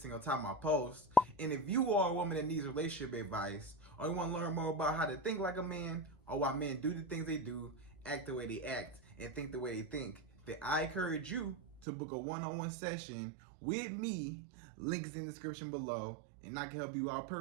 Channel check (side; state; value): left; drops out; at 11.9 s